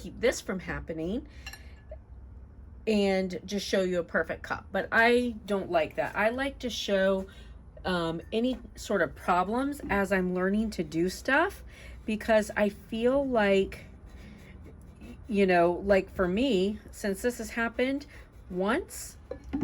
this from happening. and just show you a perfect cup. But I don't like that. I like to show any sort of problems as I'm learning to do stuff, because I feel like, you know, like for me, since this has happened once,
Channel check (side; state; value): both; identical; correlation 1.00